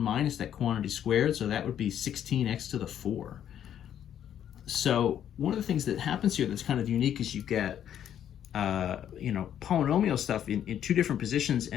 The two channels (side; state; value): right; quieter; 10.0 dB